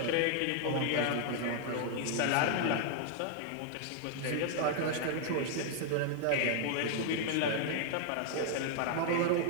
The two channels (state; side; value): different; both; correlation 0.00